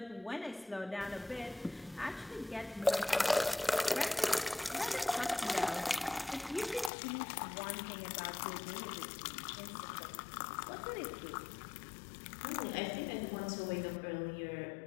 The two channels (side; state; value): right; drops out; at 6.9 s